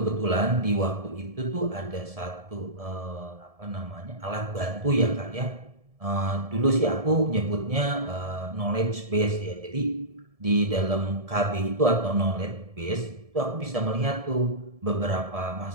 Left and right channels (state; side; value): late; left; 1.7 ms